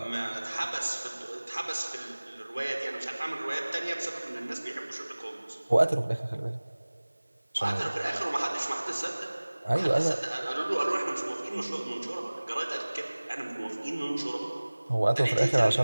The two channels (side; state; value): both; inverted; correlation -1.00